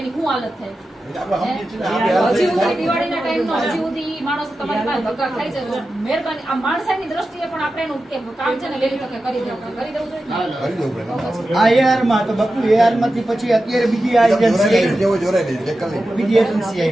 એની શું હાલત થાય એટલે આપણે સમજીએ છીએ ને, આપણે હજી સુધી દિવાળીના ટાઈમનો હજી સુધી ઈ માણસ તમારી પાસે ધક્કા ખાય છે તો મહેરબાની આ માણસાઈની દ્રષ્ટિએ પણ આપણે એનું કે કામ છે ને વહેલી તકે કરી દેવું જોઈએ. કરી દેવું જોઈએ ને? કરી દેવું પડે. આ AR માં તો બાપુ AR માંથી પછી અત્યારે બીજી આ એજન્સી આવી જેવો જોરાઈ દે, જે કરી દે. બીજી એજન્સી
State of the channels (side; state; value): both; normal; correlation 0.92